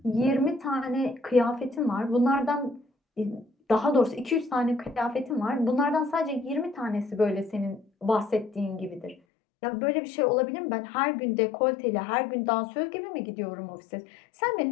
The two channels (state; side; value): drops out; right; at 9.2 s